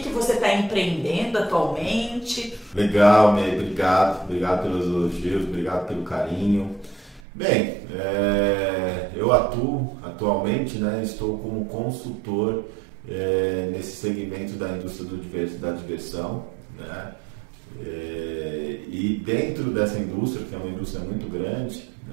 você está empreendendo atualmente. Legal, Ney, obrigado pelos elogios, obrigado pelo carinho. Bem, eu atuo atualmente, estou como consultor nesse segmento da indústria da diversão, e dentro dessa indústria, que é uma indústria muito grande,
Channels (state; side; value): drops out; left; at 7.2 s